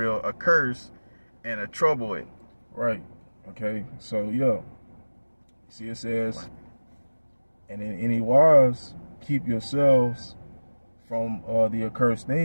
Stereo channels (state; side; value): inverted; both; correlation -1.00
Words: a curse and a trouble it. Right, okay, so see it says, and in any wise keep yourselves from the accursed